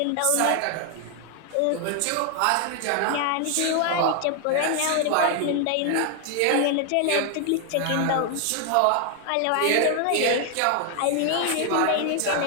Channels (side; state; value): both; different; correlation 0.00